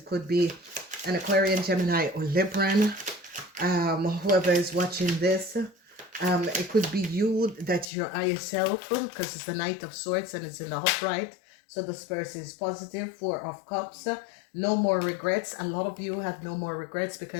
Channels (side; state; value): right; drops out; at 7.9 s